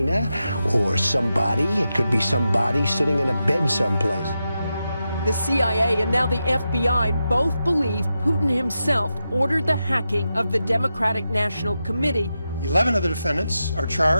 or somebody. It could be somebody sitting in a bed someplace. The CIA and now the FBI both believe Putin himself ordered the hacking of the Democratic National Committee. 11 of the defendants are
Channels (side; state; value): both; inverted; correlation -0.89